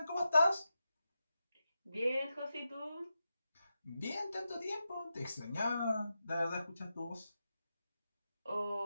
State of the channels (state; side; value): inverted; both; correlation -0.90